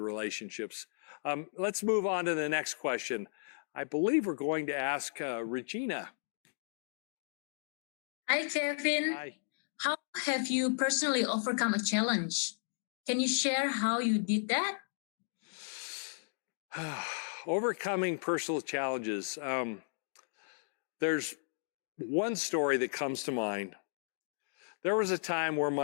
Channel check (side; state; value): right; silent; digital silence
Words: Let's move on to the next question. I believe we're going to ask Regina. Hi, Kevin. Hi. How have you personally overcome a challenge? Can you share how you did that? Overcoming personal challenges. There's one story that comes to mind. There was a time where